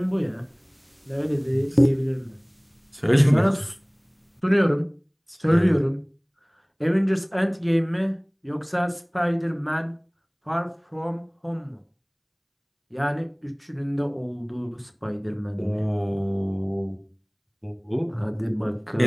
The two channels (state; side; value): identical; both; correlation 1.00